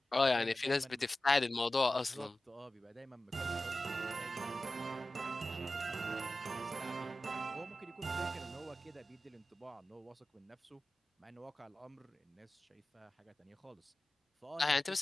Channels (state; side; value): normal; both; correlation 0.95